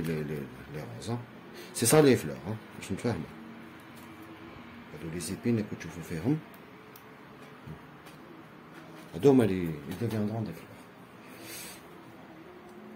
روز سي سا لي فلور باش نتفاهمو. هادو لي زيبين اللي كتشوفو فيهم هادو هما لي deviendront des fleurs.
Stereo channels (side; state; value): both; identical; correlation 1.00